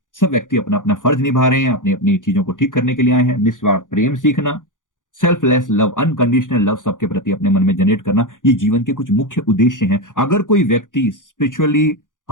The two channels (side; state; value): right; late; 0.88 ms